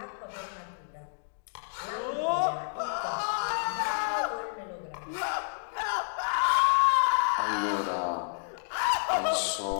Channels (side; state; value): right; silent; digital silence